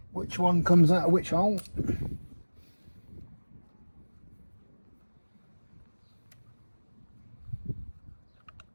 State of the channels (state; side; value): inverted; both; correlation -1.00